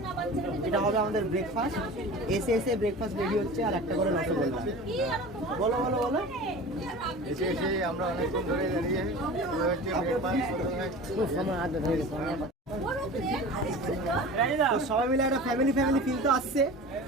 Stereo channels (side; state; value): both; normal; correlation 0.36